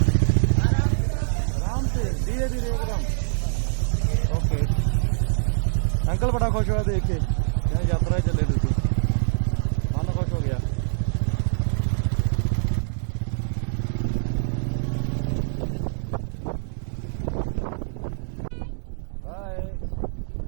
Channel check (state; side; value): silent; left; 62 dB below the other